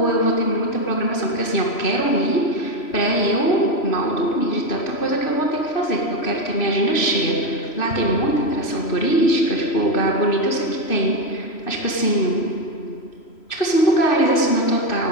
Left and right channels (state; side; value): late; right; 3.0 ms